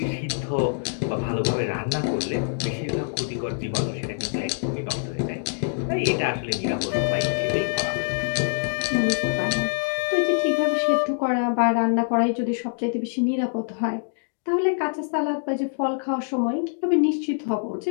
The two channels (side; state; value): right; silent; digital silence